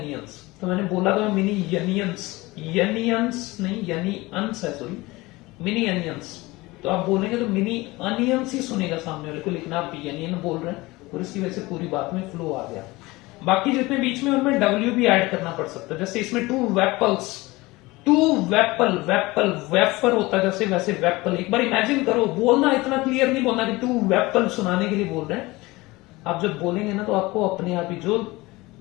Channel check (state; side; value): quieter; right; 21.3 dB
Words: तो मैंने बोला था मिनी यनियंस, यनियंस नहीं यनी अंस है, सॉरी मिनी अनियंस। तो आप बोलेंगे तो मिनी अनियंस ही सुनेगा सामने वाले को, लेकिन आप यनियन बोल रहे हैं और इसकी वजह से पूरी बात में फ्लो आ गया। बाकी जितने बीच में उनमें डब्ल्यू भी ऐड करना पड़ सकता है, जैसे इसमें 2 वेपल्स, 2 वेपल, वेपल वेफर होता है जैसे, वैसे वेपल। एक बार इमेजिन करो, बोलना इतना क्लियर नहीं बोलना कि 2 वेपल सुनाने के लिए बोल रहे हैं। आप जब बोलेंगे ना तो आपको अपने आप ही, जो